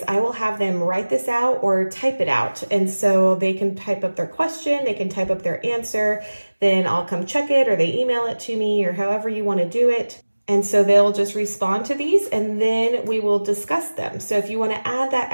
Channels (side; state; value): both; inverted; correlation -1.00